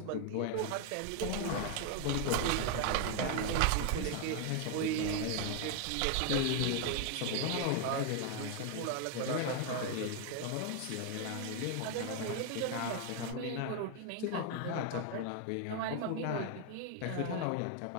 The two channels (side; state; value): both; different; correlation 0.01